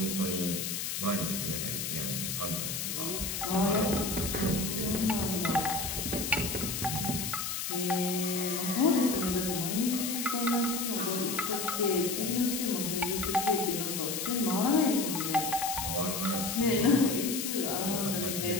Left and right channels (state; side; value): noise; left; hiss, 3 dB below the sound